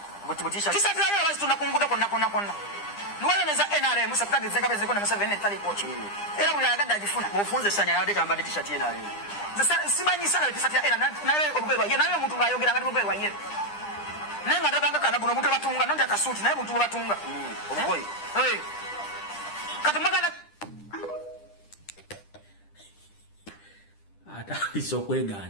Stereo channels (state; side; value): late; right; 9.9 ms